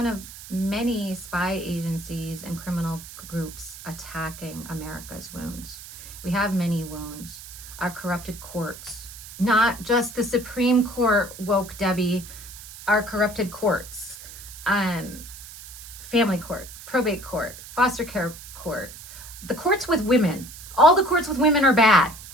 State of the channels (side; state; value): right; noise; hiss, 15 dB below the sound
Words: of many spy agencies and criminal groups attacking America's wounds. We have many wounds. Our corrupted courts, not just the Supreme Court, woke Debbie, our corrupted courts, family court, probate court, foster care court, the courts with women. All the courts with women are bad.